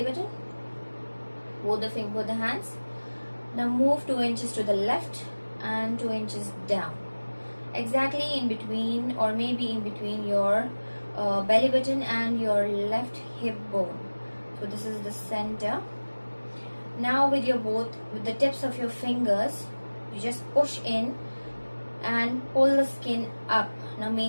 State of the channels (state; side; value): inverted; both; correlation -1.00